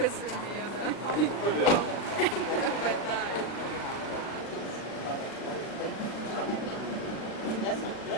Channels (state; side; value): late; right; 40 ms